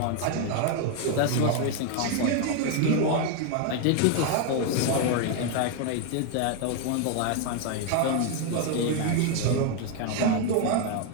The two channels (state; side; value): different; both; correlation 0.01